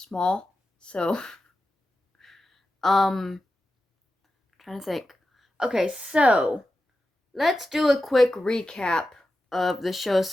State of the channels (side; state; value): both; normal; correlation 0.92